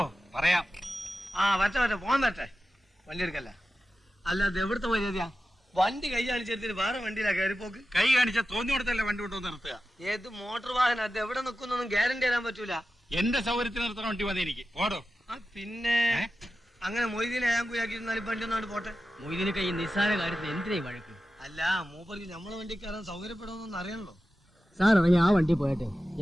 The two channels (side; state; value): both; normal; correlation 0.93